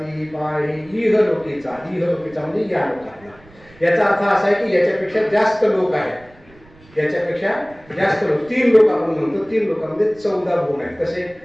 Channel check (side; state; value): right; noise; rumble, 26 dB below the sound